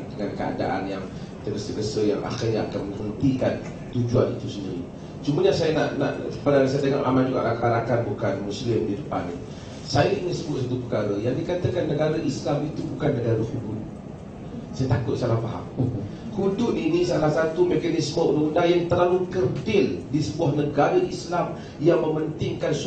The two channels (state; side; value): identical; both; correlation 1.00